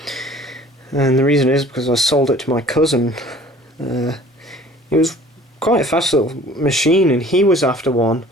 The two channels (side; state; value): both; normal; correlation 0.50